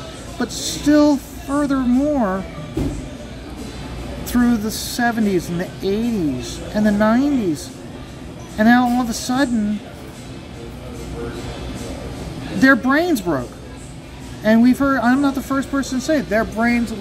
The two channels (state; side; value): identical; both; correlation 1.00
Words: but still furthermore through the 70s and the 80s and the 90s, and now all of a sudden their brains broke. And we've heard, I'm not the first person to say it, their brains